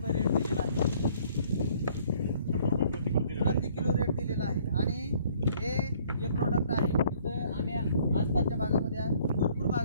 रेट दिलेला आहे, 100 रुपये प्रति किलो रेट दिलेला आहे. आणि हे जे प्रोडक्ट आहे तिथं आम्ही आसपासच्या भागामध्ये भरपूर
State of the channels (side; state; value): both; inverted; correlation -0.59